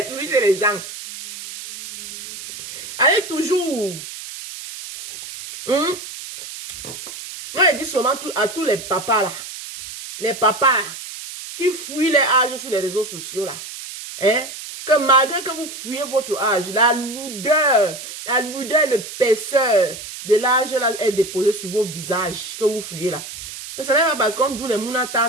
toujours chez les gens. Allez toujours. Moi, je dis seulement à tous les papas là. Les papas là, qui fuient les âges sur les réseaux sociaux là. Hein? Que malgré que vous fuyez votre âge, la lourdeur, l'épaisseur de l'âge là est déposée sur vos visages que vous fuyez là. Que ce n'est pas parce qu'on doit les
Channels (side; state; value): right; noise; hiss, 11 dB below the sound